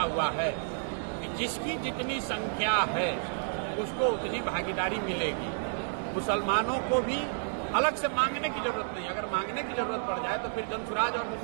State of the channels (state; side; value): silent; left; digital silence